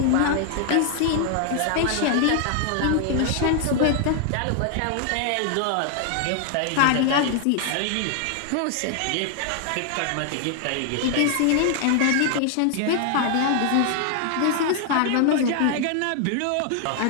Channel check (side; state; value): both; different; correlation 0.00